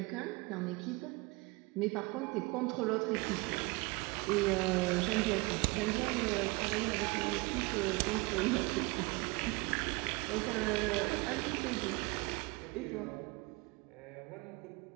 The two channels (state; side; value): quieter; left; 25.6 dB